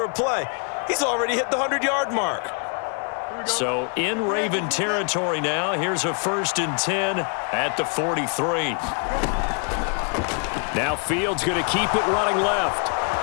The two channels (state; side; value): quieter; right; 40.0 dB